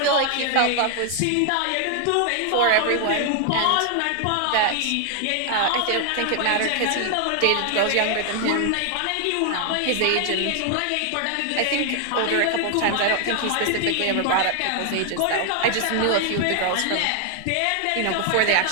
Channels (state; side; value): different; both; correlation 0.00